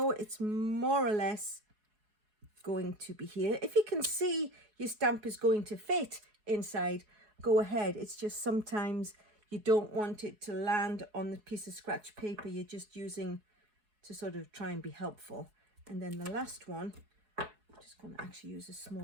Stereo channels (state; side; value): late; left; 4.7 ms